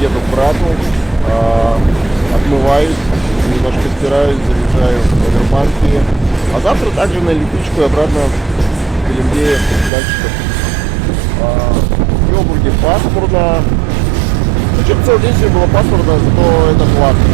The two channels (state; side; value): drops out; left; at 9.9 s